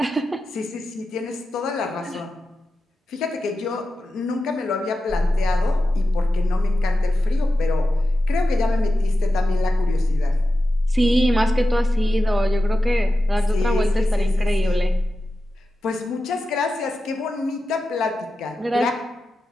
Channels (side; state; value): both; normal; correlation 0.92